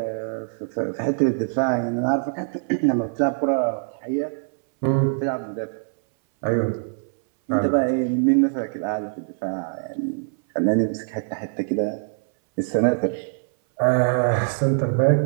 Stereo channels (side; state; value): left; silent; 60 dB below the other